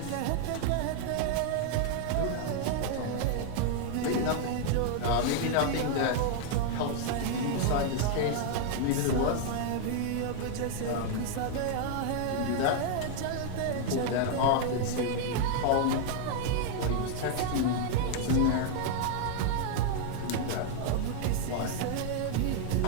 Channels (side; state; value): both; different; correlation 0.00